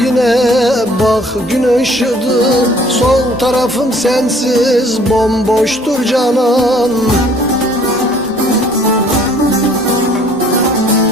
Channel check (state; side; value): normal; both; correlation 0.56